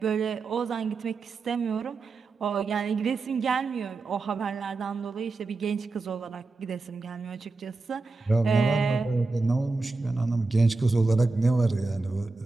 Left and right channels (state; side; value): quieter; left; 3.7 dB